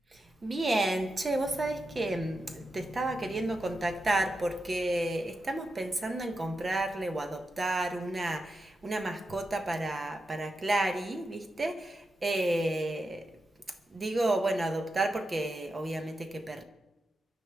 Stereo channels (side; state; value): both; normal; correlation 0.88